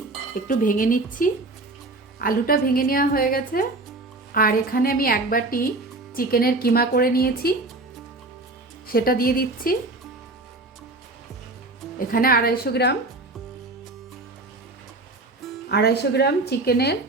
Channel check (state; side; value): quieter; left; 3.0 dB